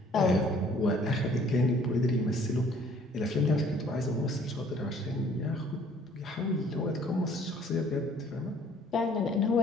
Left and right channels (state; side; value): normal; both; correlation 0.57